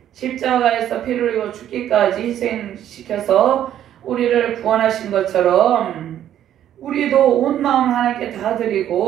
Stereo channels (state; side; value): quieter; left; 11.0 dB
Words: 십자가에서 피를 흘리고 죽기까지 희생시켜서 우리를 구원하신 것처럼 우리도 온 마음을 하나님께 다